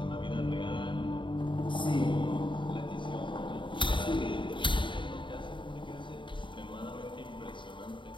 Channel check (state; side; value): late; right; 0.23 ms